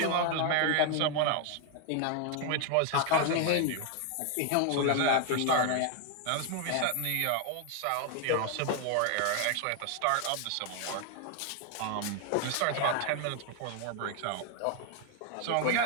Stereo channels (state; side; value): different; both; correlation 0.01